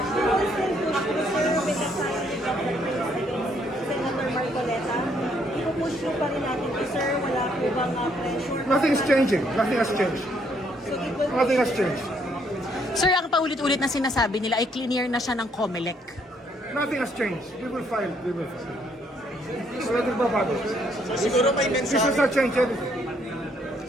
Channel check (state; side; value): normal; both; correlation 0.69